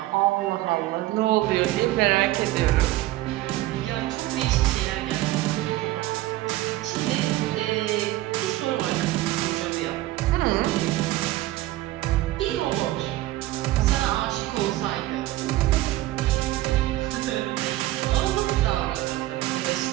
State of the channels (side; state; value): left; quieter; 16.5 dB